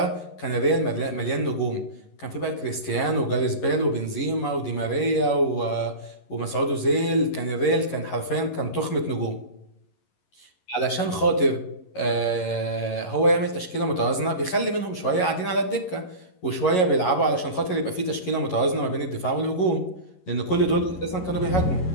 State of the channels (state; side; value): late; right; 11 ms